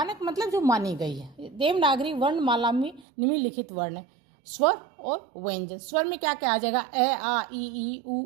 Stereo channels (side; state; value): left; drops out; at 3.1 s